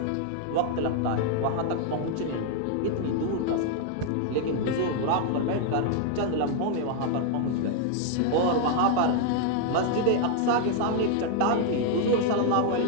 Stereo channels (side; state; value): both; different; correlation 0.00